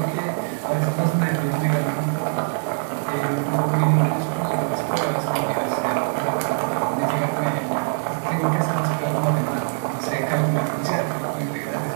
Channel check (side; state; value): left; silent; digital silence